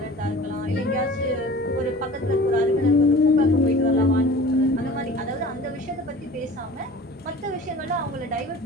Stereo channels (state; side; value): normal; both; correlation 0.42